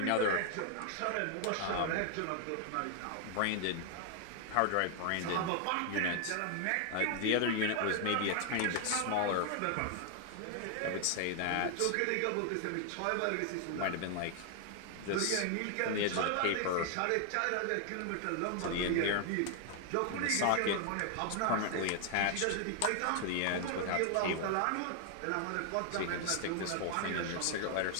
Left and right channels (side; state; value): both; different; correlation 0.00